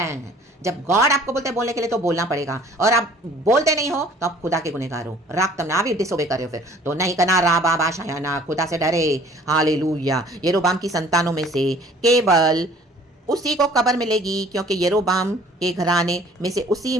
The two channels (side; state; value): both; normal; correlation 0.53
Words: जब गॉड आपको बोलते हैं बोलने के लिए, तो बोलना पड़ेगा। और आप बोलते नहीं हो तो आप खुदा के गुनहगार हो, रक्तम ना भी डिसोबे करे हो, फिर तो नहीं करना। रा बाबा शायाना, खुदा से डरे, हालेलुया। यरोबाम की संतानों में से केवल उसी को कब्र मिलेगी, क्योंकि यरोबाम के घराने में से उसी